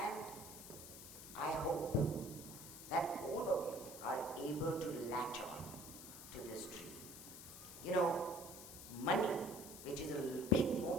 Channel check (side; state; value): left; noise; hiss, 12 dB below the sound